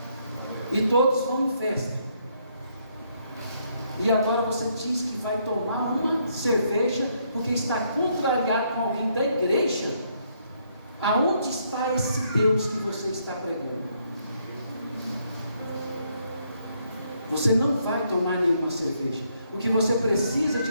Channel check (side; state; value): both; inverted; correlation -0.72